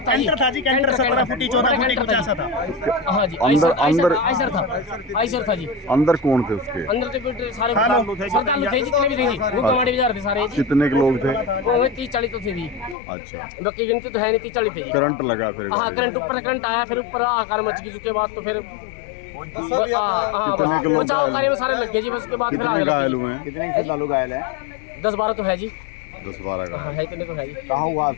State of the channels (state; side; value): drops out; right; at 13.0 s